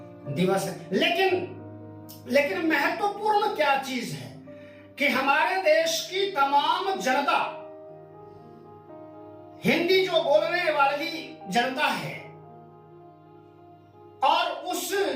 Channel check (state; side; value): identical; both; correlation 1.00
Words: दिवस लेकिन महत्वपूर्ण क्या चीज है कि हमारे देश की तमाम जनता, हिंदी जो बोलने वाली जनता है, और उस